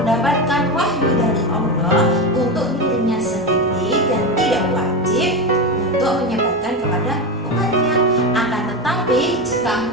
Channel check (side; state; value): both; normal; correlation 0.16